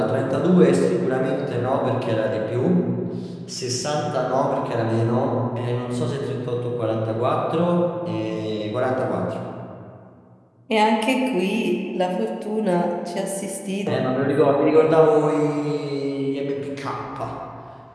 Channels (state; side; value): identical; both; correlation 1.00